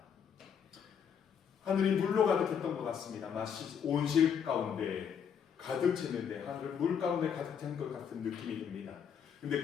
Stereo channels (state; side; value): quieter; right; 7.6 dB